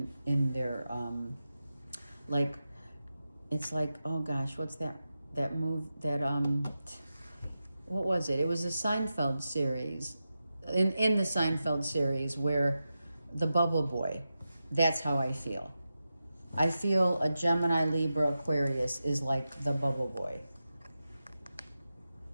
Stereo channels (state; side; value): inverted; both; correlation -0.92